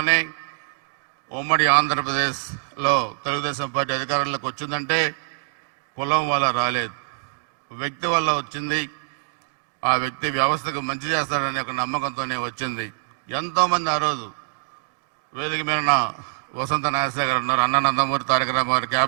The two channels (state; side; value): silent; left; digital silence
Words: ఉమ్మడి ఆంధ్రప్రదేశ్లో తెలుగుదేశం పార్టీ అధికారంలోకి వచ్చిందంటే కులం వల్ల రాలేదు, వ్యక్తి వల్ల వచ్చింది. ఆ వ్యక్తి వ్యవస్థకు మంచి చేస్తాడనే ఒక నమ్మకంతోనే వచ్చింది. ఎంతోమంది ఆ రోజు వేదిక మీద వసంత నాగేశ్వర గారు ఉన్నారు, అన్న నందమూరి తారక రామారావు